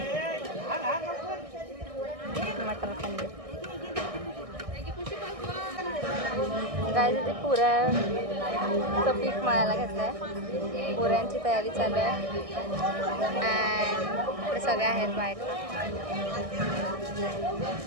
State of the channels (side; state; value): left; late; 1.6 ms